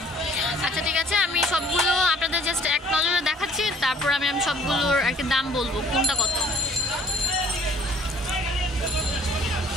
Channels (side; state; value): both; normal; correlation 0.56